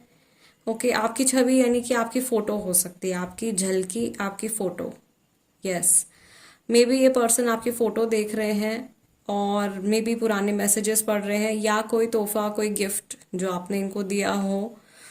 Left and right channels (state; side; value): identical; both; correlation 1.00